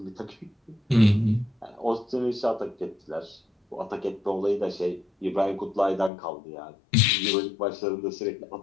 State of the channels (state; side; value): drops out; right; at 6.1 s